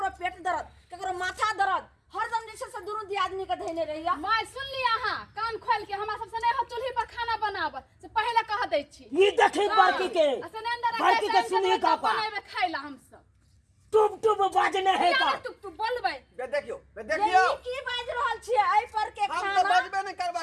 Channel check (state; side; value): identical; both; correlation 1.00